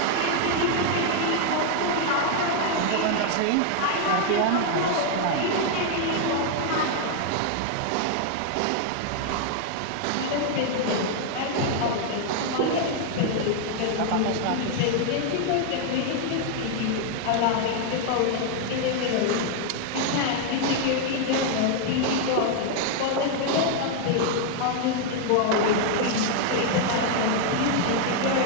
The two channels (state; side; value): different; both; correlation 0.00